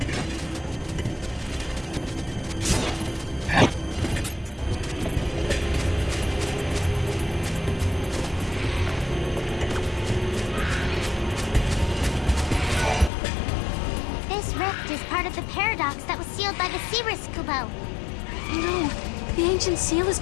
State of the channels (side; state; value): right; drops out; at 13.1 s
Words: No, the ancient seal has